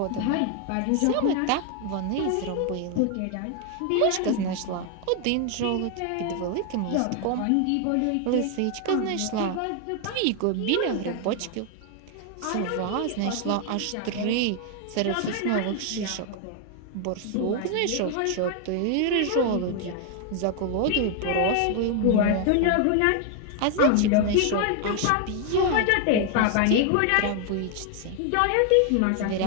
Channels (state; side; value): different; both; correlation 0.01